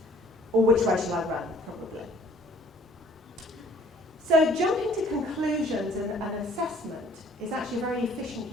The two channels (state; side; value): normal; both; correlation 0.55